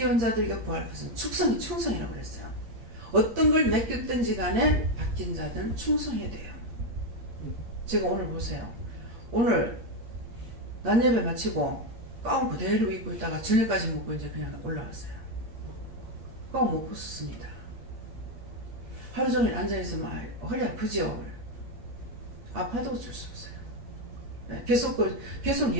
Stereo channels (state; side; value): late; left; 8.6 ms